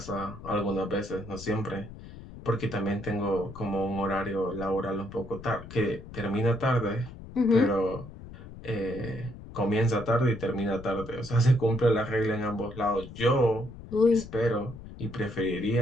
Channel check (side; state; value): left; noise; rumble, 15 dB below the sound